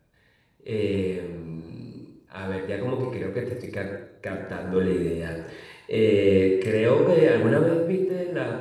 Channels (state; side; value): identical; both; correlation 1.00